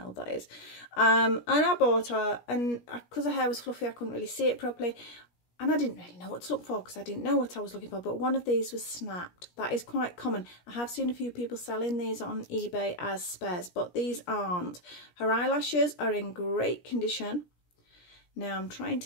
that is. And I bought her, and because her hair was fluffy, I couldn't really see it properly. And I didn't really know what to look for because I didn't know what I was looking for. But one of these was snapped. That is quite common. I have seen a few people selling these on eBay as spares, but these aren't. Her eyelashes are in great condition. Now I'm trying to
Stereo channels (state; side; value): late; right; 17 ms